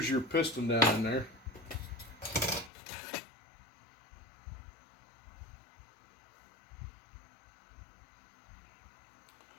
your piston down in there.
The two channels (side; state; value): right; drops out; at 2.7 s